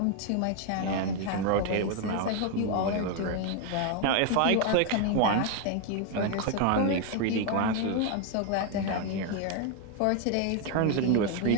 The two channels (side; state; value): both; different; correlation 0.01